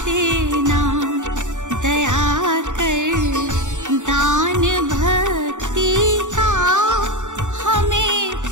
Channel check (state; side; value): late; left; 0.85 ms